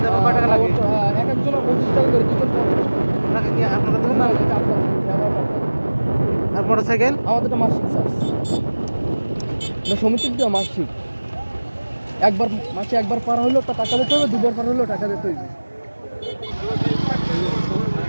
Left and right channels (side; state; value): both; inverted; correlation -1.00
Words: যাবো। কয় টাকা লাগে? এক একজন 25 টাকা করে, 2 জন 50 টাকা। আপনাকে কি আপনারা দেবেন না? এটা আপনার খেয়া পার। আর মোটরসাইকেল আমাদেরটা মাসিক চার্জ, সমিতির দেওয়া মাসিক। মাসে একবার পার হইলেও তা টাকা দিতে হবে, দুবার পার হইলেও টাকা দিতে হবে।